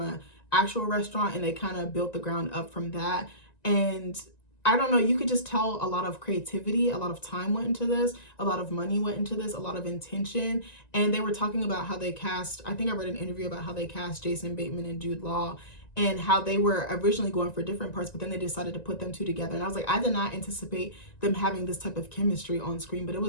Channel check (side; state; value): right; late; 1.9 ms